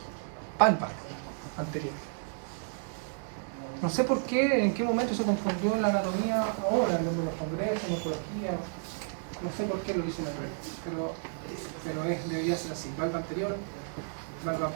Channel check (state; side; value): silent; left; digital silence